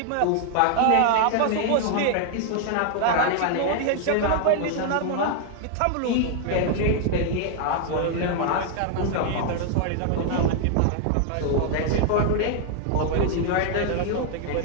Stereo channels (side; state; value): both; different; correlation 0.00